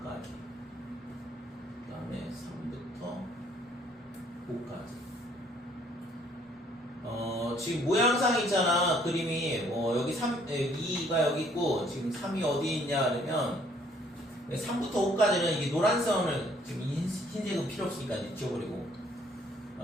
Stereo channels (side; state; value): both; normal; correlation 0.62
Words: 그 다음에 3부터 5까지 지금 모양상 있잖아 그림이 여기 2가 여기 있고 지금 3이 어디 있냐 그러면 3부터 5까지는 이게 노란 선을 지금 흰색은 필요 없으니까 이제 지워버리고